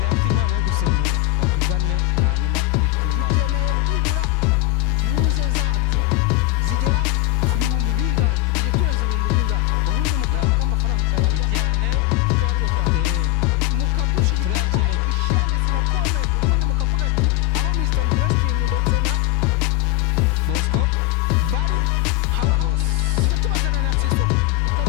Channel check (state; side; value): quieter; right; 17.0 dB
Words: afite impano yo gusemura batugane hanyuma tujye tunaba. Dukeneye byibura views zacu zigera ku bihumbi bingahe tukije turenze ibihumbi bingahe ubundi mukareba ko amafaranga tutayarya cyane tukayarya cyane mukadushigikira like share ndetse na comment ubundi mukavuga ati aho Mr Interesting ndetse na Bosco bari haba hahi tujye tubazana na Sisoko